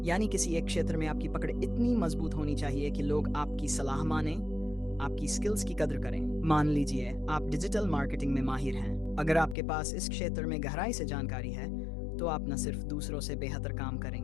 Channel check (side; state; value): right; drops out; at 9.6 s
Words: यानी किसी एक क्षेत्र में आपकी पकड़ इतनी मजबूत होनी चाहिए कि लोग आपकी सलाह माने, आपकी स्किल्स की कदर करें। मान लीजिए आप डिजिटल मार्केटिंग में माहिर हैं। अगर आपके पास इस क्षेत्र में गहराई से जानकारी है, तो आप न सिर्फ दूसरों से बेहतर काम